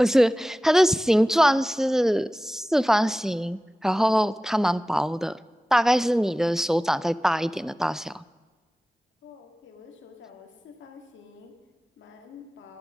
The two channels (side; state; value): both; normal; correlation 0.97